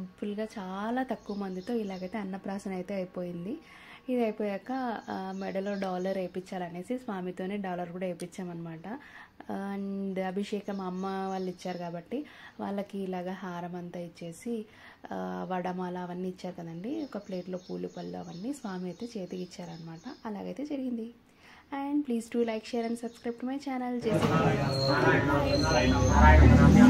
చాలా తక్కువ మందితో ఇలాగైతే అన్నప్రాసన అయితే అయిపోయింది. ఇది అయిపోయాక మెడలో డాలర్ వేయించాలనేసి స్వామితోనే డాలర్ కూడా వేయించామన్నమాట. అండ్ అభిషేకం అమ్మ వాళ్ళు ఇచ్చారు కాబట్టి వాళ్ళకి ఇలాగ హారం అంతా ఇచ్చేసి వడమాల అవన్నీ ఇచ్చారు కదండి, ఒక ప్లేట్లో పూలు పళ్ళు అవన్నీ స్వామి అయితే చేతికి ఇచ్చారనమాట. అలాగైతే జరిగింది. And please do like, share and subscribe to my channel.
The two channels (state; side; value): identical; both; correlation 1.00